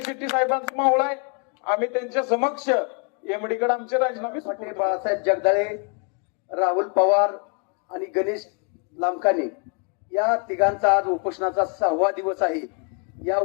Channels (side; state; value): right; quieter; 36.3 dB